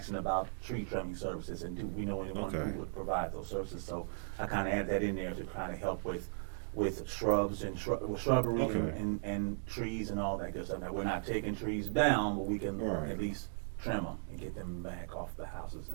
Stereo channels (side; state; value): left; silent; digital silence